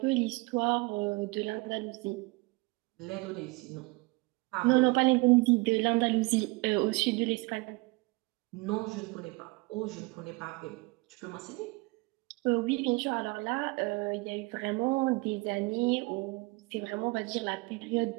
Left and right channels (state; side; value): quieter; left; 25.9 dB